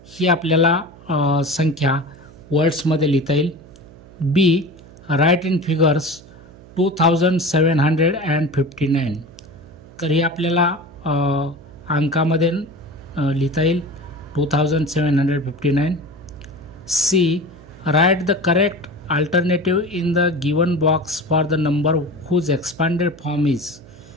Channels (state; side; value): noise; right; hum, 21 dB below the sound